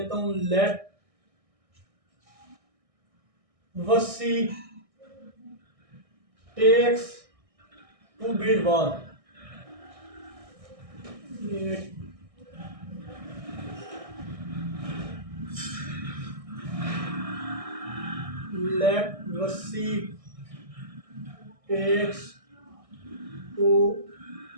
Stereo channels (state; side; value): late; left; 1.6 ms